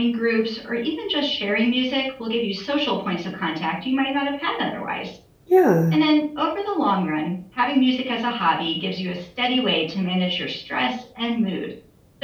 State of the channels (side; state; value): both; identical; correlation 1.00